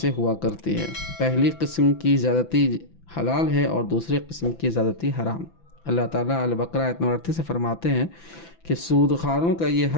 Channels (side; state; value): right; late; 6.0 ms